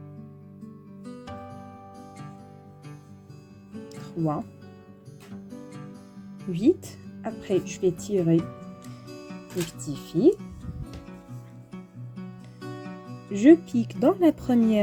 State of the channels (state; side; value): identical; both; correlation 1.00